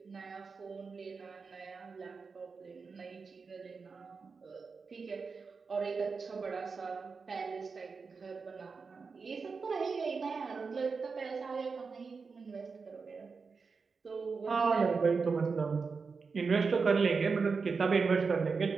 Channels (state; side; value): quieter; left; 4.9 dB